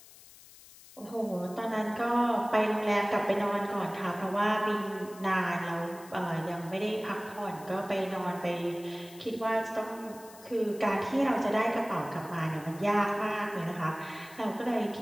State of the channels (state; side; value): noise; left; hiss, 21 dB below the sound